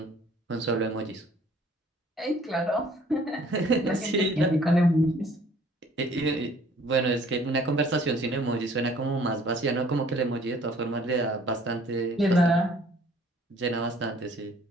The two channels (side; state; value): both; normal; correlation 0.56